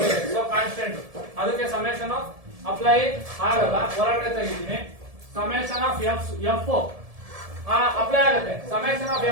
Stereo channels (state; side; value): late; left; 1.7 ms